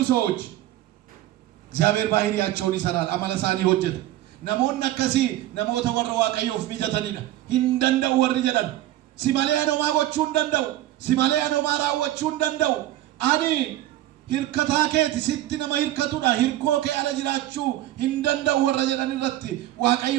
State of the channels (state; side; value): quieter; left; 14.4 dB